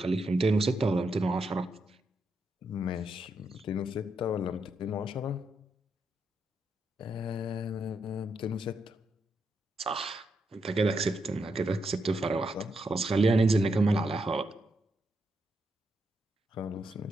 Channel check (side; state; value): both; normal; correlation 0.82